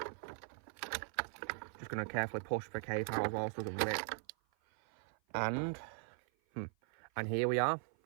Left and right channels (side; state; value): left; silent; 51 dB below the other